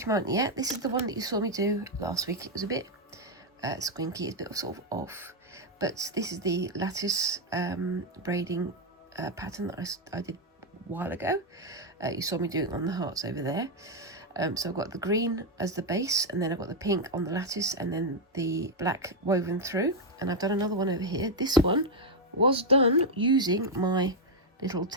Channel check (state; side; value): normal; both; correlation 0.02